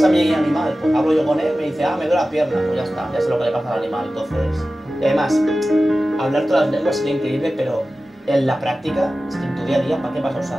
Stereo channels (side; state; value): both; normal; correlation 0.95